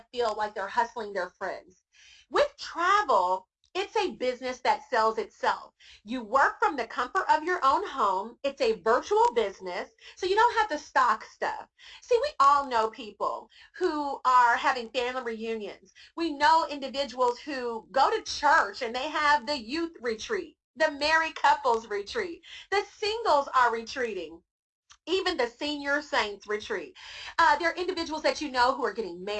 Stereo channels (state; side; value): identical; both; correlation 1.00